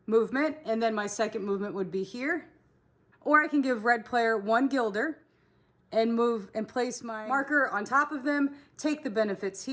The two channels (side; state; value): both; identical; correlation 1.00